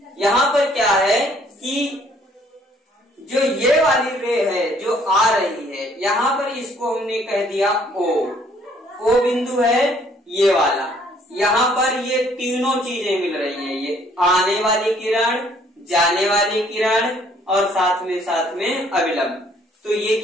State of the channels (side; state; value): both; normal; correlation 0.62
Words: पर क्या है कि जो ये वाली रे है जो आ रही है, यहाँ पर इसको हमने कह दिया ओ बिंदु है ये वाला। यहाँ पर ये तीनों चीजें मिल रही हैं, ये आने वाली किरण, जाने वाली किरण और साथ में अविलंब। तो ये